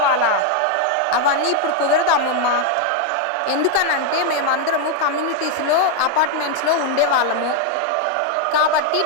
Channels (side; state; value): both; different; correlation 0.01